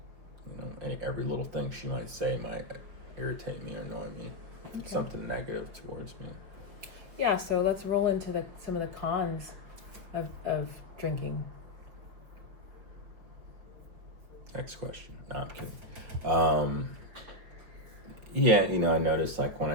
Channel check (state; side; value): late; left; 5.6 ms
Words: every little thing she might say might irritate me or annoy me. Okay. Something negative towards me. Yeah, so let's roll into some of the cons of drinking. Next question. No, I'm kidding. I notice like when